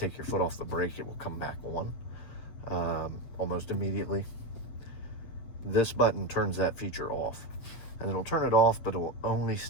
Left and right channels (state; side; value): late; right; 8.1 ms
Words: your foot off the brake, it will come back on almost immediately. This button turns that feature off, and it'll turn it off, but it will only